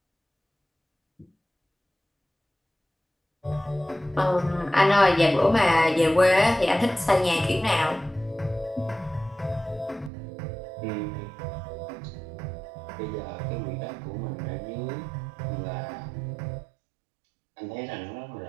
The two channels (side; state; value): left; drops out; at 10.1 s